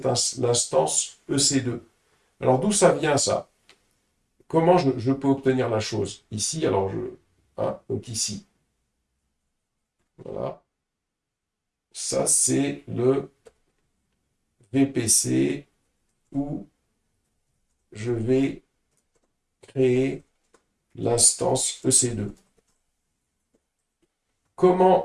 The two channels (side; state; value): both; identical; correlation 1.00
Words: l'instance EC2. Alors d'où ça vient ça? Comment je peux obtenir la chose? Ici, alors hein, donc ici. Voilà. Ça, c'est le VPC où je vais créer l'instance EC2.